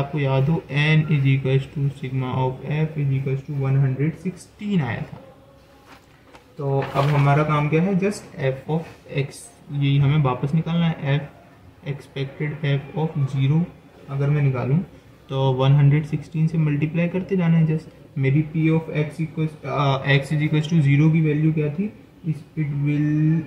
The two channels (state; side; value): identical; both; correlation 1.00